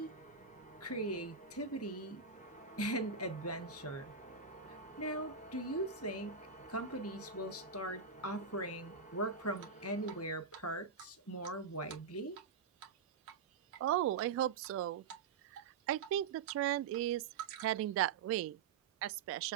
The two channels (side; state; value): left; quieter; 5.8 dB